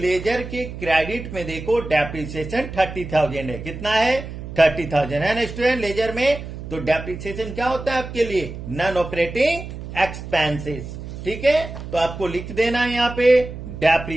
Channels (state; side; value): noise; right; hum, 10 dB below the sound